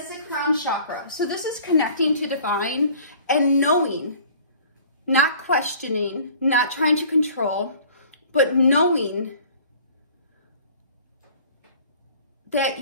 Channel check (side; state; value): both; inverted; correlation -0.50